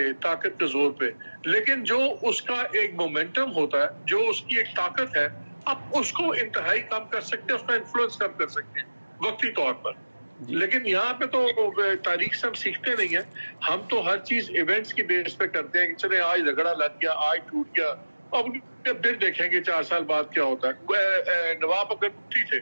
طاقت کے زور پہ, لیکن جو اس کا ایک مومنٹم ہوتا ہے, جو اس کی ایک طاقت ہے, آپ اس کو انتہائی کم کر سکتے ہیں, اس کا انفلوئنس کم کر سکتے ہیں وقتی طور پر. لیکن یہاں پہ تو تاریخ سے ہم سیکھتے نہیں ہیں, ہم تو ہر چیز ایونٹس کی بیس پہ کرتے ہیں کہ چلے آج جھگڑا لگ گیا, آج ٹوٹ گیا, اب پھر دیکھیں گے 4 سال بعد کیا ہوتا ہے. نواب اکبر بگٹی تھے,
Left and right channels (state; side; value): inverted; both; correlation -1.00